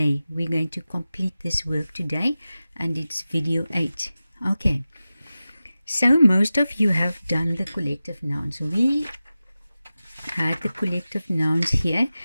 We're going to complete this work today, and it's video 8. Okay, so most of you have done the collective nouns. We had the collective nouns here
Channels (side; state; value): both; inverted; correlation -0.95